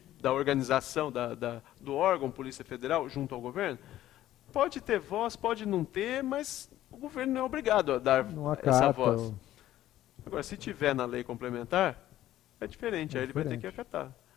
da organização, do órgão Polícia Federal junto ao governo? Pode ter voz, pode não ter, mas o governo não é obrigado a dar essa voz. Agora, se tiver na lei complementar, é diferente, aí ele vai ter que acatar.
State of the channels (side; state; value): right; quieter; 13.6 dB